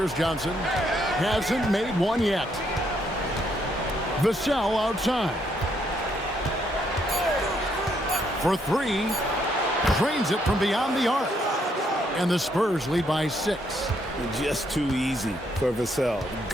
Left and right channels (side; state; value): both; normal; correlation 0.73